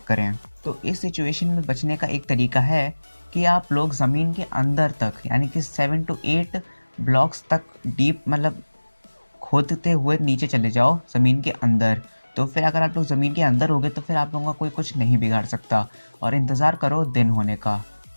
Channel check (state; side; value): inverted; both; correlation -1.00